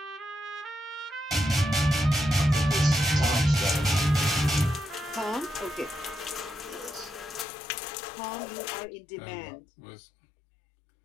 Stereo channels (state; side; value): drops out; right; at 7.5 s